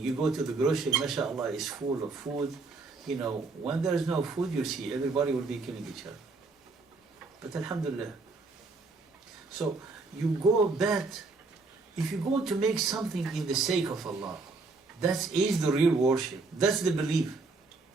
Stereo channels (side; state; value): left; quieter; 3.8 dB